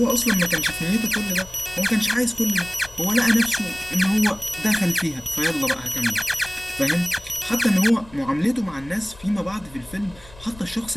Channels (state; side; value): noise; left; rumble, 21 dB below the sound